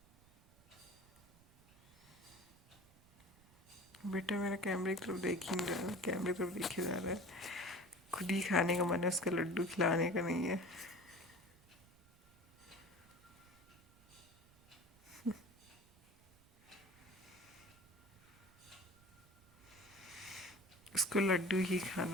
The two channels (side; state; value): right; noise; rumble, 27 dB below the sound